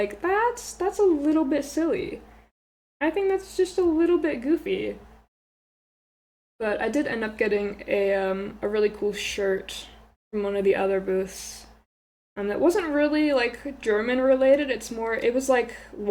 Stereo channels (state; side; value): identical; both; correlation 1.00